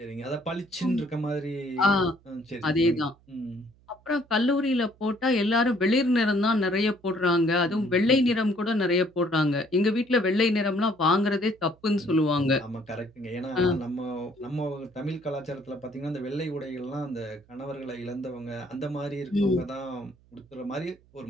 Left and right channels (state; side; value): noise; right; hum, 30 dB below the sound